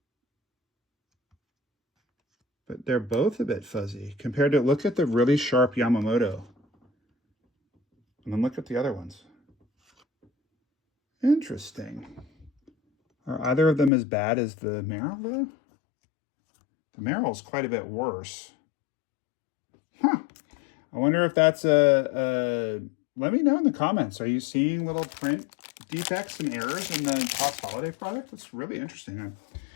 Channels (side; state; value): right; drops out; at 13.9 s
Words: But they're both a bit fuzzy compared to... Look at the really sharp Yamamoto. And then look at the other ones. Interesting. Are either of them as bad as the Merrill, though? The Merrill is quite a bit worse. Huh. I wonder if that's a... Let me know in the comments. Are you seeing little print defects and errors in the Topps Holiday product? That's really interesting.